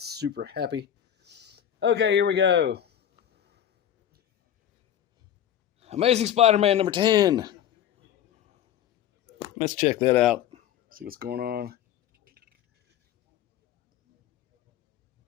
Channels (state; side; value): quieter; right; 10.3 dB